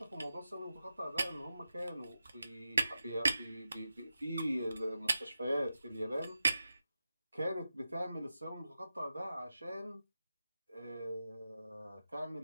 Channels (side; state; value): both; inverted; correlation -0.90